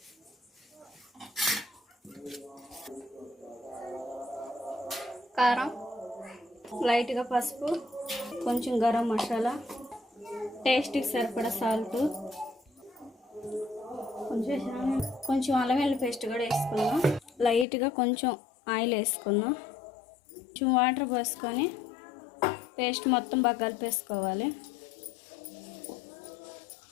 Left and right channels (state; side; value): drops out; right; at 17.7 s